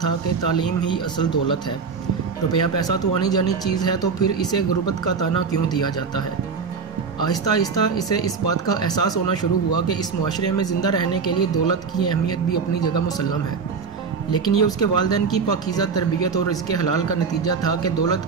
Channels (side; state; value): left; quieter; 5.4 dB